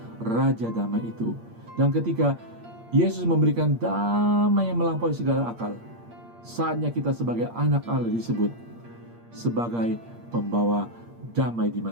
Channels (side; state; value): left; late; 8.6 ms